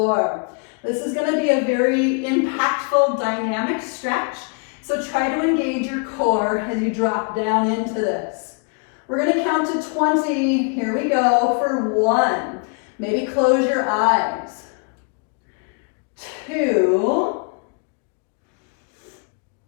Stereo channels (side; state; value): right; quieter; 37.2 dB